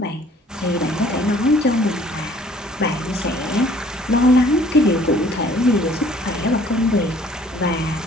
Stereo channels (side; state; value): both; normal; correlation 0.56